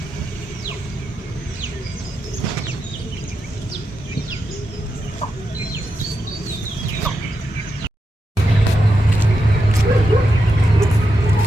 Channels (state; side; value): normal; both; correlation 0.86